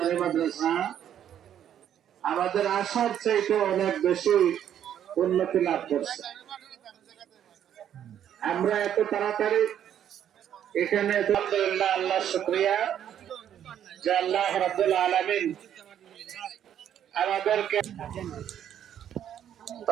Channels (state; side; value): quieter; left; 10.0 dB